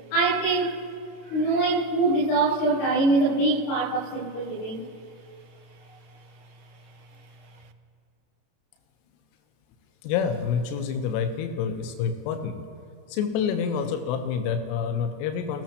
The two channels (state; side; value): late; right; 33 ms